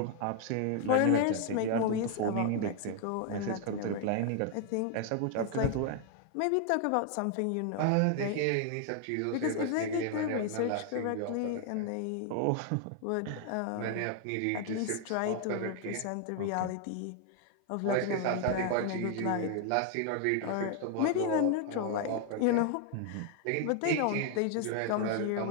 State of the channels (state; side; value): different; both; correlation 0.00